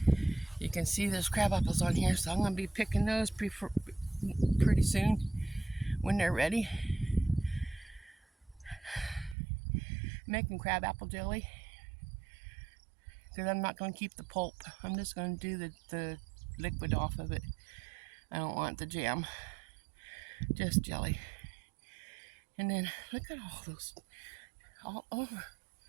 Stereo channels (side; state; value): left; drops out; at 9.3 s